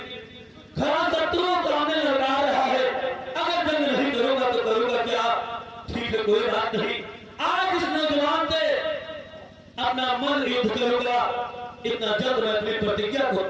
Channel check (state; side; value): identical; both; correlation 1.00